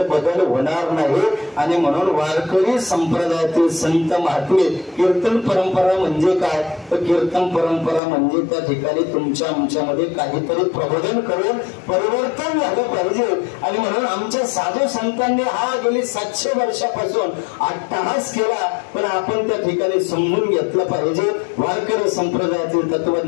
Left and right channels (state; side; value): drops out; right; at 8.0 s